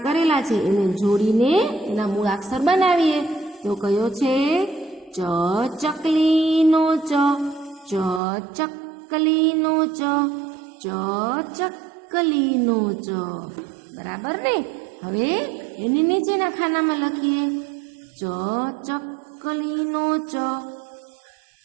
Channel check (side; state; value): left; drops out; at 8.2 s